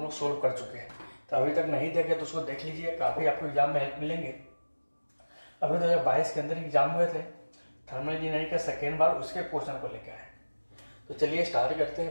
लोग सोल्व कर चुके हैं। तो अभी तक नहीं देखे तो उसको देख लीजिए, काफी आपको एग्जाम में हेल्प मिलेंगे। अभी 2022 के अंदर एग्जाम हुए थे थर्मल इंजीनियरिंग का सेकेंड बार, उसके क्वेश्चन को लेकर आए। तो चलिए स्टार्ट करते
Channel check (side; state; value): both; inverted; correlation -1.00